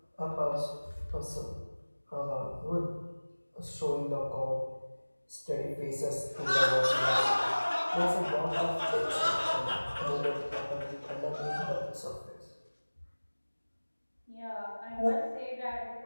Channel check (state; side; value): inverted; both; correlation -1.00